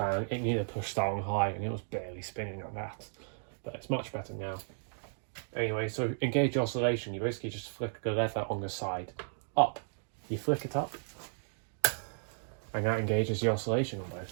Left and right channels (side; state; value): left; silent; digital silence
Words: it needed a push start on high and it was barely spinning like that. But it's much better now. Anyway, so engage oscillation, you basically just flick the lever on the side up. You flick it up, and that engages the oscillation on